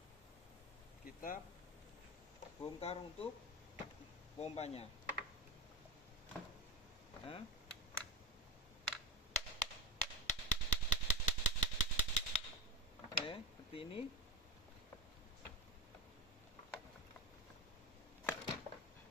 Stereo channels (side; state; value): both; normal; correlation 0.23